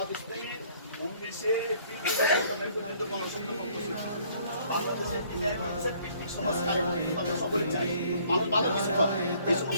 ইসলামীর 19 এপ্রিল পর্যন্ত গণসংযোগ করতেছে। বাংলাদেশের ভিত্তিক সমাজ কায়েম করতে আমরা সকলে চাই। মানুষ ভালো কিছু হয়, এই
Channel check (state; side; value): inverted; both; correlation -0.60